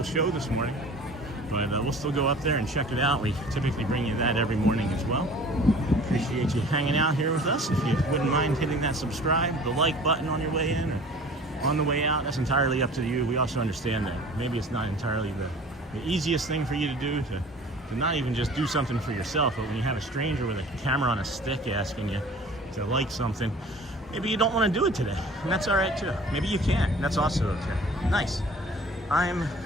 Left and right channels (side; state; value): both; normal; correlation 0.45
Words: show this morning. But we'll still go up there and check it out. We typically bring you that every morning as well. Appreciate you hanging out here with us. If you wouldn't mind hitting that subscribe, the like button on your way in or on the way out, that's entirely up to you. We also understand that maybe it's not entirely the easiest thing for you to do, to not even just do something for yourself, but when you have a stranger with a camera on a stick asking you to like something, maybe you don't want to do it today, and that's all right too. Maybe you can, and that's also okay. Nice. I'm